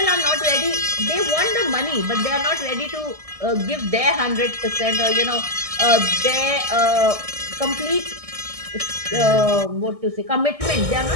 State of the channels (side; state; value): left; late; 1.6 ms